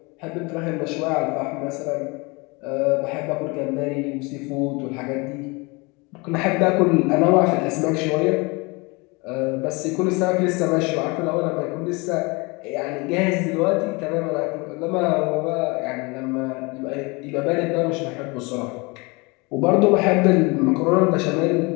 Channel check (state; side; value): quieter; right; 27.3 dB